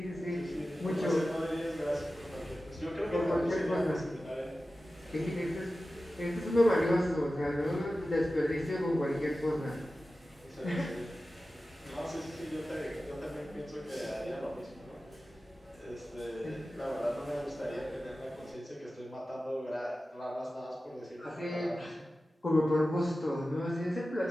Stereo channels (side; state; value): both; normal; correlation 0.94